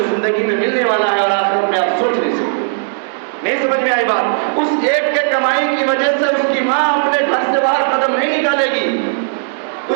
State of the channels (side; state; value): left; silent; digital silence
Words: زندگی میں ملنے والا ہے اور آخرت میں آپ سوچ نہیں سکتے۔ نہیں سمجھ میں آئی بات؟ اس ایک کے کمائی کی وجہ سے اس کی ماں اپنے گھر سے باہر قدم نہیں نکالے گی،